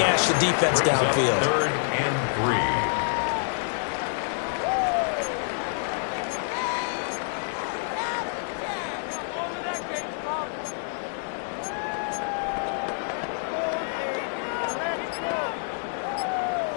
the defense downfield. 3rd and 3.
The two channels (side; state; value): right; silent; digital silence